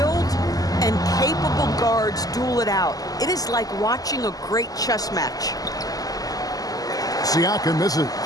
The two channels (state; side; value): late; right; 0.17 ms